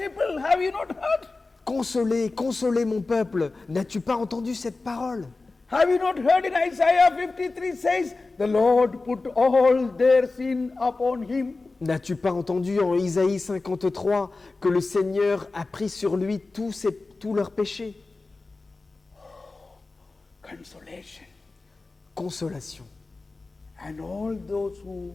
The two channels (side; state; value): right; quieter; 3.6 dB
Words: Have you not heard? Consolez, consolez mon peuple. N'as-tu pas entendu cette parole ? Have you not heard in Isaiah 53 says, the Lord put all their sin upon him. N'as-tu pas entendu en Isaïe 53 que le Seigneur a pris sur lui tous leurs péchés ? Consolation. Consolation. And all